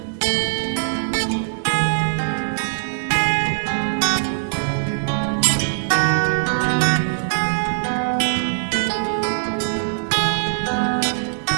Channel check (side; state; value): left; silent; digital silence